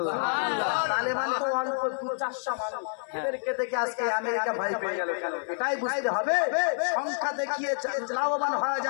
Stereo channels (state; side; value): silent; right; 59 dB below the other